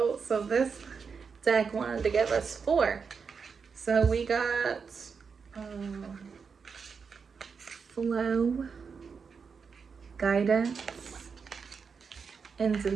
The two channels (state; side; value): quieter; left; 5.7 dB